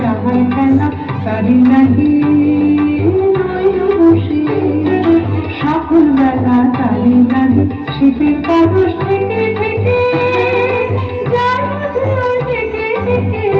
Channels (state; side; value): identical; both; correlation 1.00